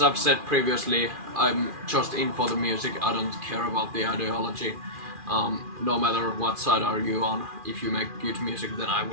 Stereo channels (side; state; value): left; late; 2.4 ms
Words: I've said previously, I'm just in for the music. I don't care about the ideology. No matter what side are you on, if you make good music, then I